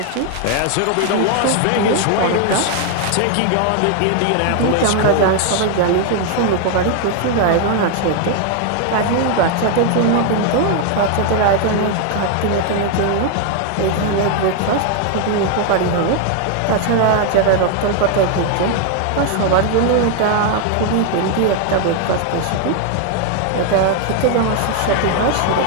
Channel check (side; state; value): both; different; correlation 0.00